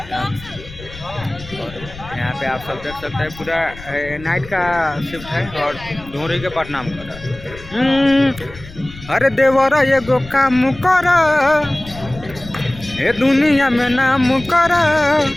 और यहाँ पे आप सब देख सकते हैं पूरा नाइट का शिफ्ट है और ढोरी के प्रणाम कर रहा है। अरे देवरा ये गो काम कर ए दुनिया में नाम कर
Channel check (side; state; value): left; noise; rumble, 16 dB below the sound